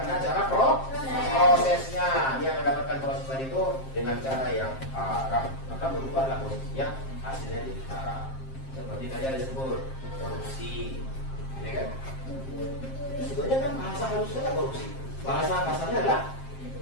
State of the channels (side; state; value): right; late; 7.5 ms